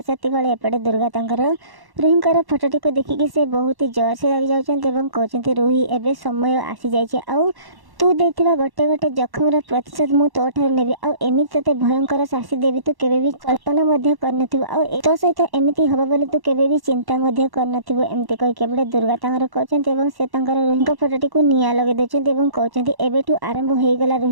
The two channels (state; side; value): late; left; 1.1 ms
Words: से एपटे दुर्गा तांकर रुही फटोटी को देखिकी से बहुत ही जोर से लगी जाऊँच कहते रुही एवं समय आसी जाए तू देथिबा गोटे गोटे जखमर प्रतिशत मु तो ठार नेबी आ एमिति तते भयंकर शास्ति देवी तू केबे भी कल्पना मध्य करनथिबो आ तो सहित एमिति हबा बोली तू केबे भी चिंता मध्य करनथिबो एमिति कहि केबे दुर्गा तांगर कहचंती एवं से तांगर रुहिंक फटोटी को निया लगे देचंती एवं कहचंती एबेठू आरंभ हो गला